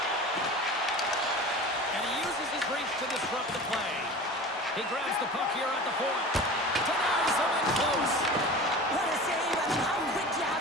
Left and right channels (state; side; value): normal; both; correlation 0.36